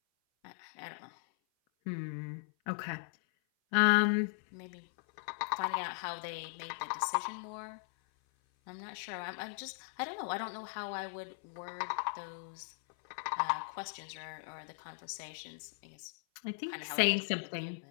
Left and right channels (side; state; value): right; silent; 52 dB below the other